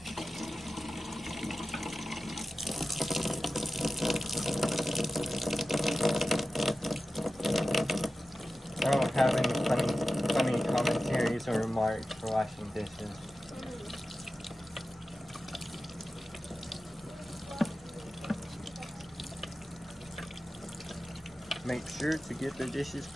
I don't have any funny commentaries or remarks for washing dishes. Make sure to get the dishes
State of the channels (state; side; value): normal; both; correlation 0.95